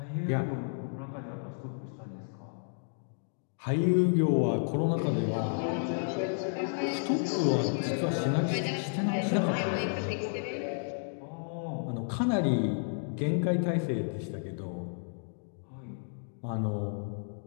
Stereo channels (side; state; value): right; silent; digital silence